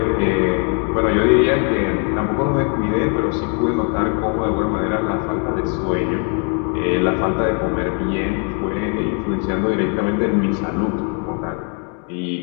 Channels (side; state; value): right; quieter; 38.7 dB